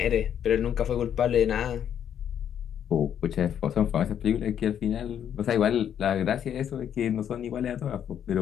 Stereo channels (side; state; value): right; quieter; 9.3 dB